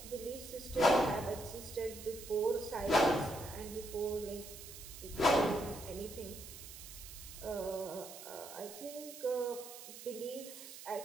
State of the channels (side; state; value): right; noise; hiss, 13 dB below the sound